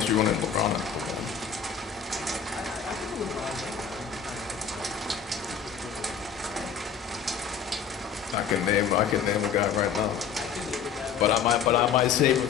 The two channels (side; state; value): right; quieter; 7.1 dB